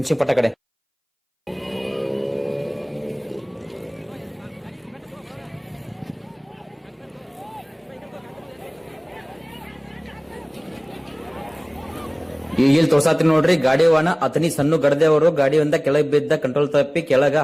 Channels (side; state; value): both; identical; correlation 1.00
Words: ಪಟ್ಟ ಕಡೆ. ಈಗ ಇಲ್ಲಿ ತೋರ್ಸಾತ್ರಿ ನೋಡ್ರಿ ಗಾಡಿ ವಾಹನ ಅತನಿ ಸಣ್ಣ ಗಡದೆ ಅವರು ಗಾಡಿಯಿಂದ ಕೆಳಗೆ ಬಿದ್ದ ಕಂಟ್ರೋಲ್ ತಪ್ಪಿ ಕೆಳಗ